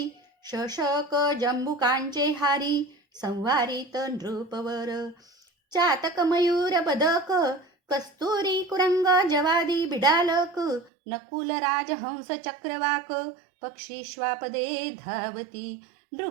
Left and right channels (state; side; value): drops out; left; at 10.9 s